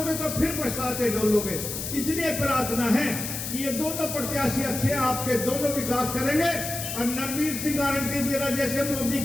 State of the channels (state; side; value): noise; left; hiss, 5 dB below the sound